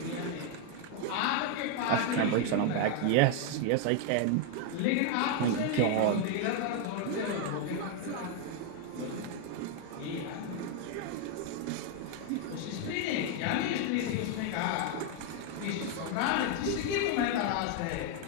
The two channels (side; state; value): both; different; correlation 0.01